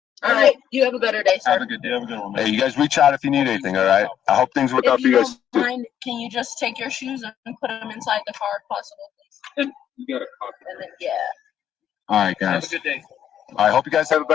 All right. You have a better day, sir. Have a good day. Have a good one, man. Hey, you guys reach out if you need anything, all right? I hope things work out If for you you guys. don't mind, can you just take your shoes and put them inside the car if possible, please? And you got a copy. And then, yeah. All right, Have guys. a good day. I hope you guys have a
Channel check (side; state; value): right; quieter; 9.8 dB